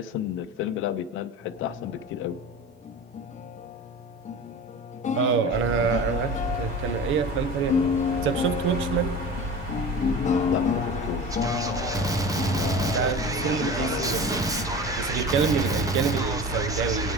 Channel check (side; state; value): both; normal; correlation 0.34